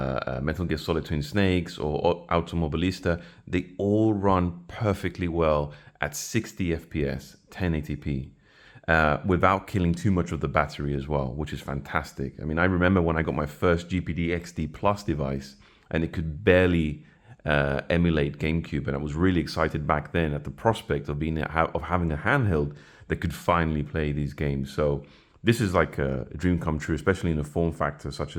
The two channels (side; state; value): both; identical; correlation 1.00